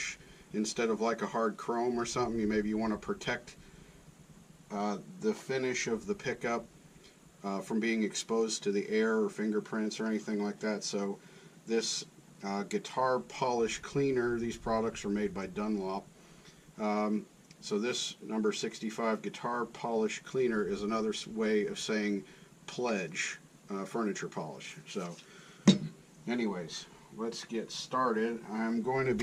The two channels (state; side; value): identical; both; correlation 1.00